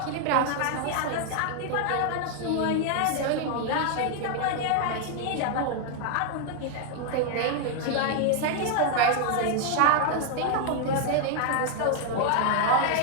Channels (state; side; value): different; both; correlation 0.00